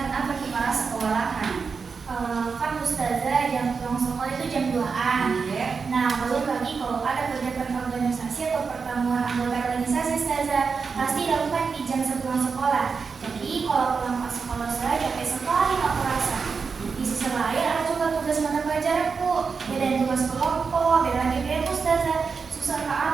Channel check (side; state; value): left; quieter; 5.2 dB